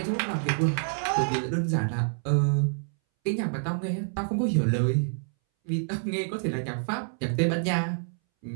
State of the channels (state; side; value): silent; left; 60 dB below the other